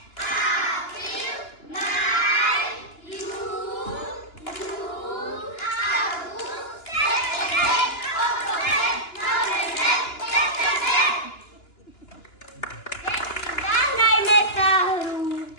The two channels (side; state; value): right; late; 2.9 ms